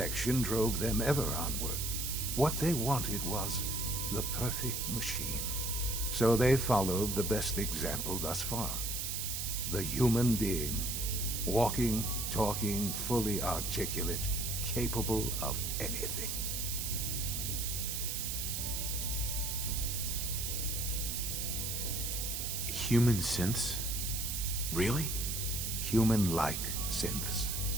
drove them ever onward. What they wanted was the perfect machine. So they followed the best example thus far. The human being. Walking, talking, fully articulate, capable of anything. Human synths? Really? Human-like synths.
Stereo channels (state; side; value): noise; right; hiss, 2 dB below the sound